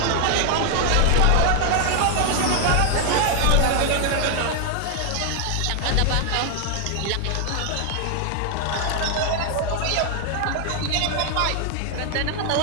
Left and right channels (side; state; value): both; different; correlation 0.00